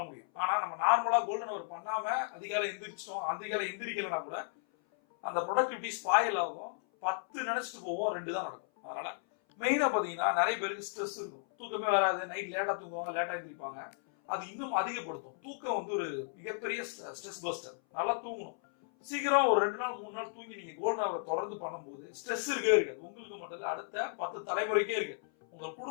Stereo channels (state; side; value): silent; right; 55 dB below the other